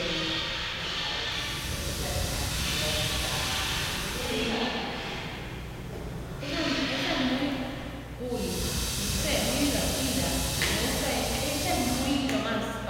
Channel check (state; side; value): identical; both; correlation 1.00